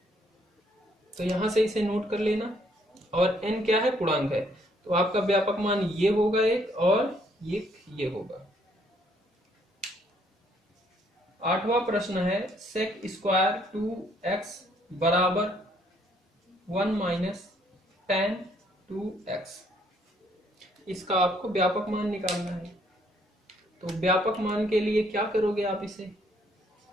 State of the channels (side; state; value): both; normal; correlation 0.67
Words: तो यहां से इसे नोट कर लेना। और n क्या है? पूर्णांक है। तो आपका व्यापक मान ये होगा एक, और ये होगा। 8वां प्रश्न है sec² 2x बराबर 1 - tan 2x। इसका आपको व्यापक मान निकालना है। तो व्यापक मान के लिए क्या करोगे आप? इसे